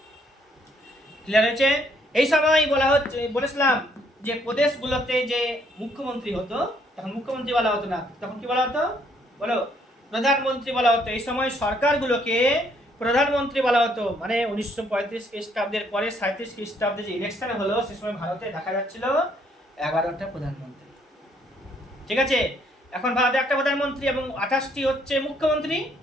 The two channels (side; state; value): both; normal; correlation 0.68